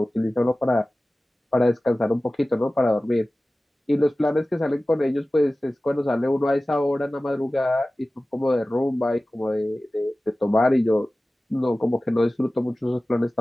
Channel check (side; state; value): both; normal; correlation 0.97